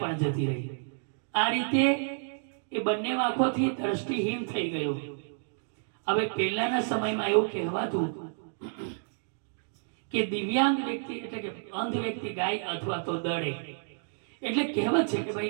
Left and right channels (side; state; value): left; silent; digital silence